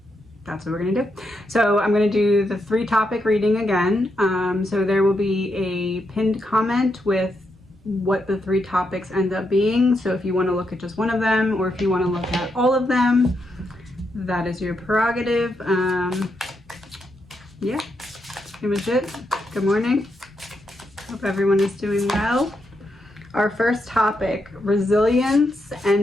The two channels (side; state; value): both; normal; correlation 0.82